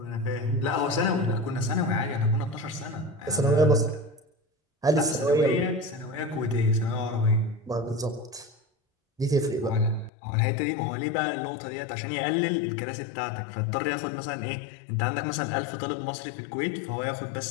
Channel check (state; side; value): drops out; right; at 10.1 s